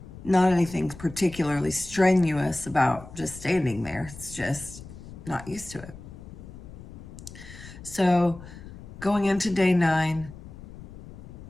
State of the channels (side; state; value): left; noise; rumble, 15 dB below the sound